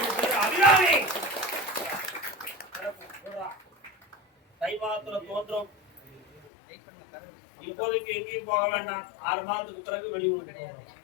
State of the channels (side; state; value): right; drops out; at 6.5 s